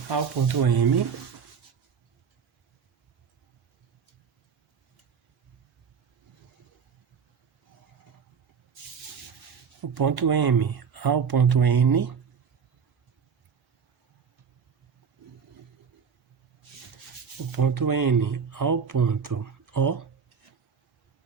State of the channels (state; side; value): quieter; left; 6.5 dB